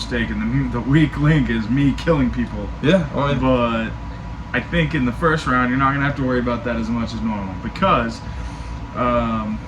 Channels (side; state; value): both; identical; correlation 1.00